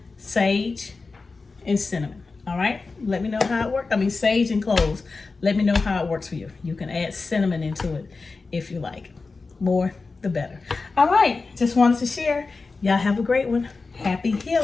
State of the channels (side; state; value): right; quieter; 4.0 dB